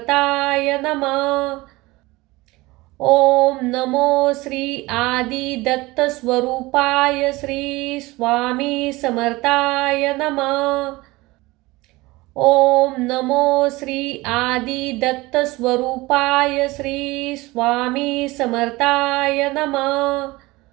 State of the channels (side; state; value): left; quieter; 21.1 dB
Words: नमः। ओम नमो श्री आदि दत्त स्वरूपाय श्री स्वामी समर्थाय नमः। ओम नमो श्री आदि दत्त स्वरूपाय श्री स्वामी समर्थाय नमः।